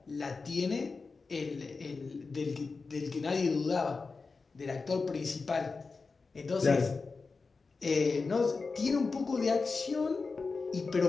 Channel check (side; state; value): right; quieter; 4.3 dB